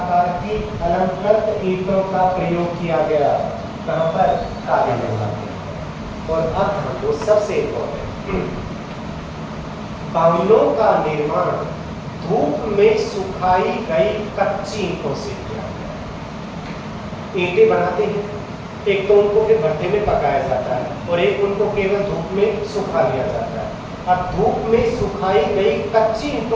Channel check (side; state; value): both; identical; correlation 1.00